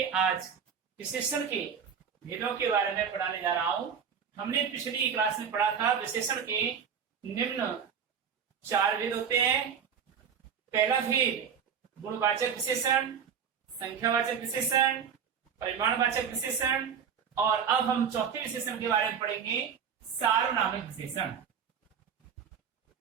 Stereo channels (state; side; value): quieter; left; 7.3 dB